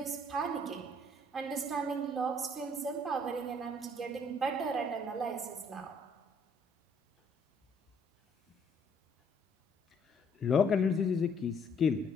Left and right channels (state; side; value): normal; both; correlation 0.63